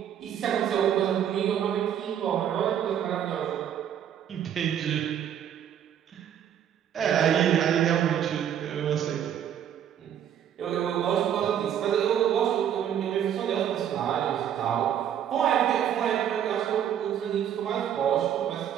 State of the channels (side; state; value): left; quieter; 9.6 dB